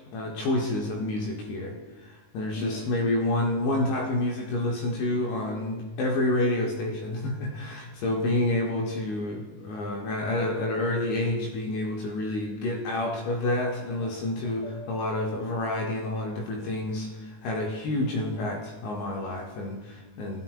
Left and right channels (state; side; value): late; right; 19 ms